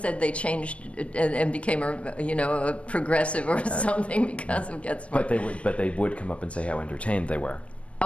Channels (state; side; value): late; right; 0.062 ms